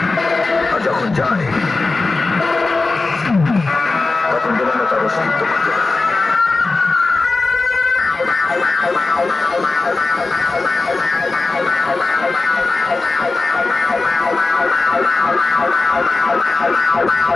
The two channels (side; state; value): right; quieter; 3.6 dB